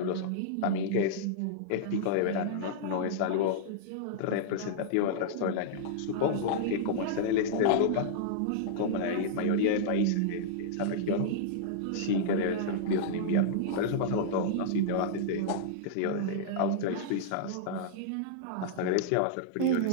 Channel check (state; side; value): different; both; correlation -0.02